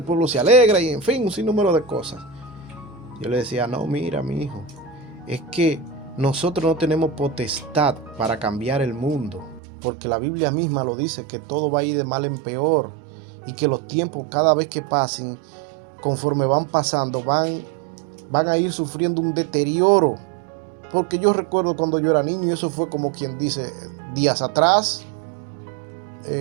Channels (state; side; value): drops out; left; at 9.6 s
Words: pueblo se alegra, y en fin, un sinnúmero de cosas. Yo le decía, no, mira, mi hijo, es que nosotros no tenemos potestad para cambiar el mundo, porque la Biblia misma lo dice, que todo va a ir de mal en peor, y que los tiempos cada vez que pasen, conforme van pasando, van a ir sufriendo un deterioro. Porque yo recuerdo cuando yo era niño, y eso fue como quien dice días atrás,